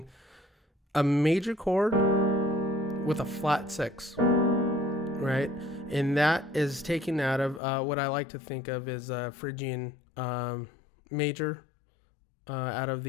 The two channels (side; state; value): right; drops out; at 7.6 s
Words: a major chord with a flat 6, right? And that is taken out of what I like to think of as a Phrygian major out of